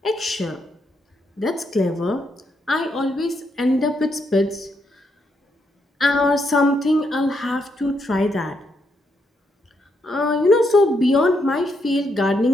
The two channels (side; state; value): both; normal; correlation 0.78